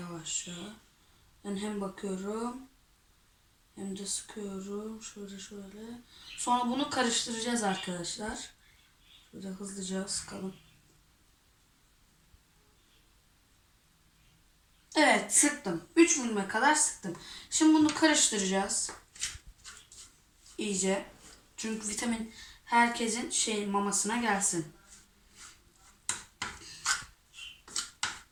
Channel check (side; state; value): both; identical; correlation 1.00